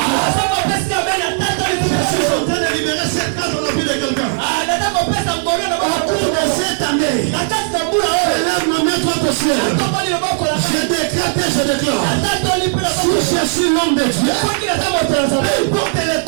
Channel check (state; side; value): silent; left; 69 dB below the other